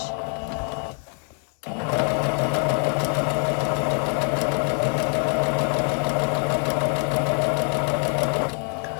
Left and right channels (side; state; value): right; quieter; 39.9 dB